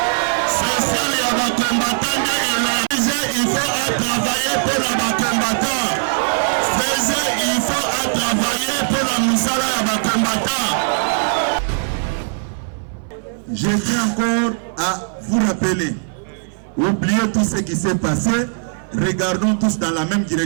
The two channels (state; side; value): silent; left; 58 dB below the other